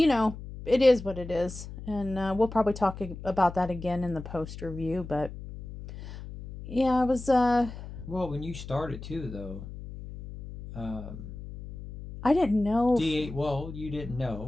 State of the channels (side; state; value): left; noise; hum, 12 dB below the sound